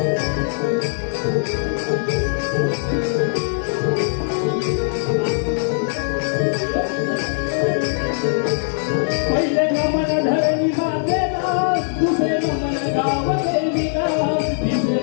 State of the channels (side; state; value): right; silent; digital silence